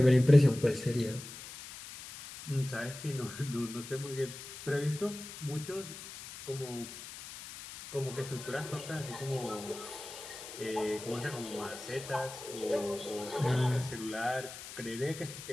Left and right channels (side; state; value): left; noise; hiss, 12 dB below the sound